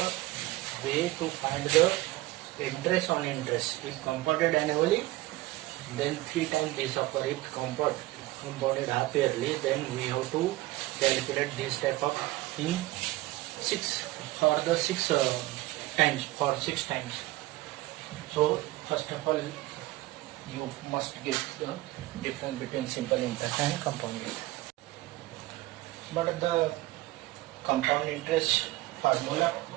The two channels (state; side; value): quieter; left; 18.6 dB